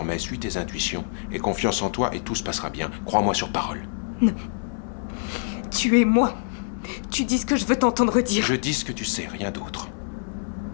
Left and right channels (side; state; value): right; silent; digital silence